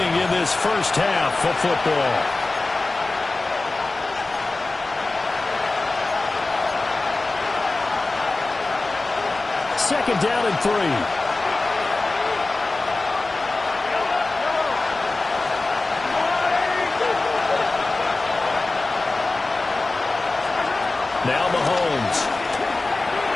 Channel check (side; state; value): right; quieter; 3.3 dB